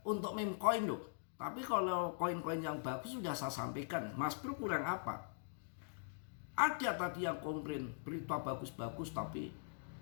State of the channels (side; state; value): right; silent; digital silence